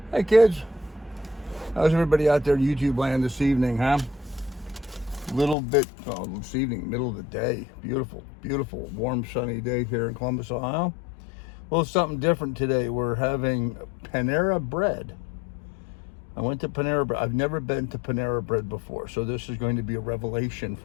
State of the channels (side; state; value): right; drops out; at 5.6 s